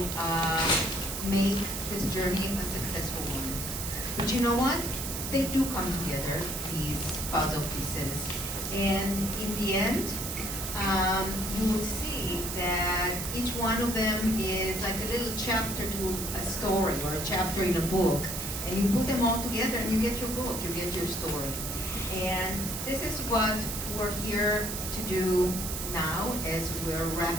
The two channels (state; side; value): noise; right; hiss, 5 dB below the sound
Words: make this journey a successful one. But you know what? They do come together, these puzzle pieces. And in the end, you will see that each one of them is like a little chapter to a story or a chapter in a book. And you put them all together and you get your book, you get your story. And this is what we're here to do now as we're